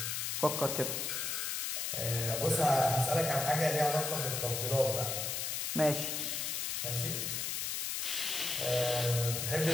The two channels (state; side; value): noise; left; hiss, 1 dB below the sound